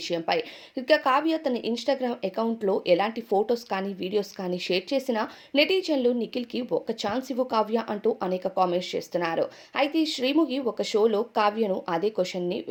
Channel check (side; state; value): both; identical; correlation 1.00